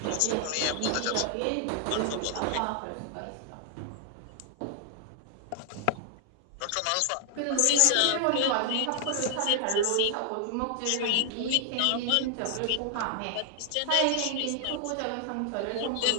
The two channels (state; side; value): different; both; correlation 0.00